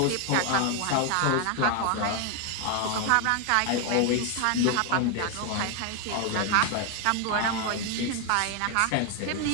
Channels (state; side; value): different; both; correlation 0.01